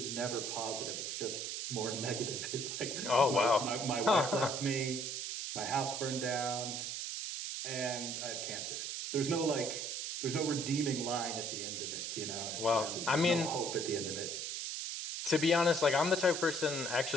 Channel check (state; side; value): noise; right; hiss, 4 dB below the sound